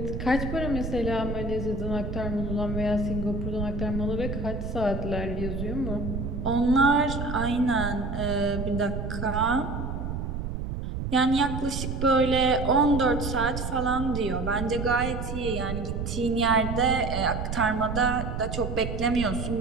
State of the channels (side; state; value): right; noise; rumble, 4 dB below the sound